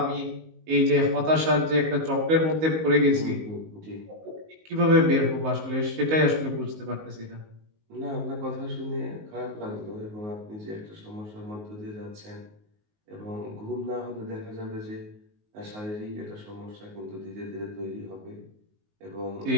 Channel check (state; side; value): late; left; 19 ms